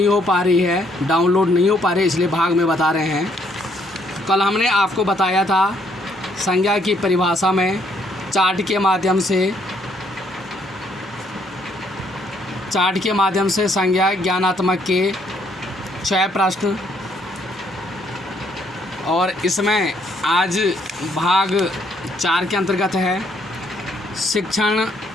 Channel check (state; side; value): normal; both; correlation 0.69